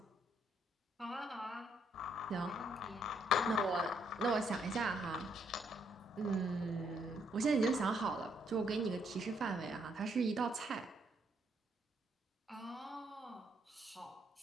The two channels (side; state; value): both; normal; correlation 0.72